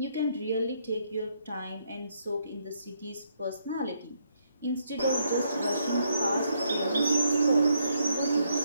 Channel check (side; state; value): both; inverted; correlation -0.74